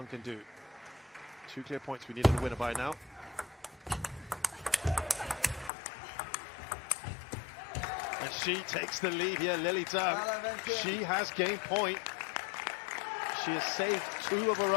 can do. 2 clear points. We needed a winner by now. And she takes the lead here, Lily Zhang. She has game point. She has saved 2 of her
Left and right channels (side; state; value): right; drops out; at 5.7 s